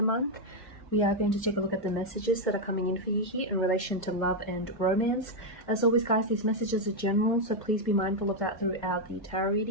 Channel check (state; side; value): normal; both; correlation 0.01